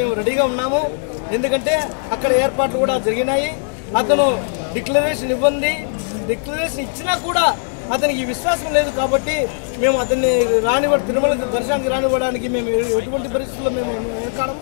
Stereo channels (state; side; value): silent; right; digital silence